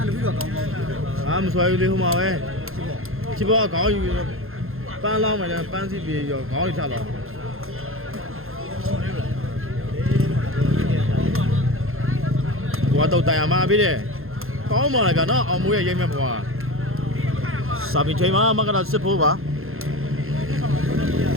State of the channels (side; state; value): left; late; 0.61 ms